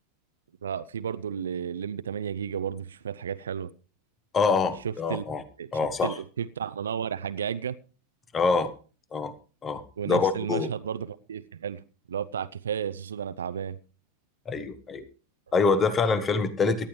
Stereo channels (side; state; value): both; normal; correlation 0.32